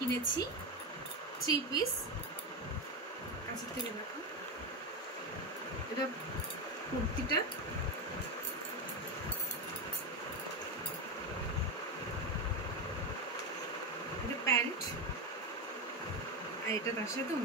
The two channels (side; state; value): both; normal; correlation 0.13